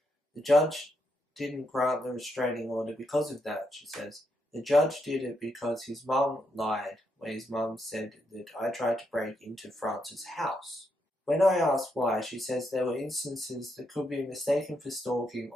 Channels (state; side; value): normal; both; correlation 0.80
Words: The judge didn't grant the restraining order because of that, she says. The judge did it because his mum lied when his mum said that I tried to break into France's house. When I asked why, she says there were instances that could be mistaken for stalking